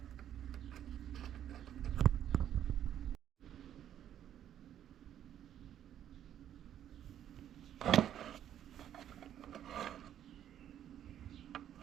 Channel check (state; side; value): quieter; left; 10.5 dB